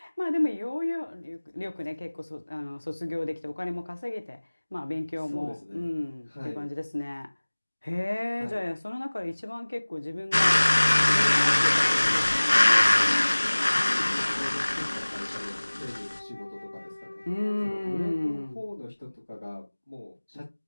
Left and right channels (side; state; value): both; inverted; correlation -1.00